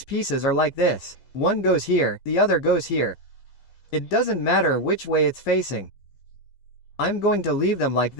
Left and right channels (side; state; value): right; late; 15 ms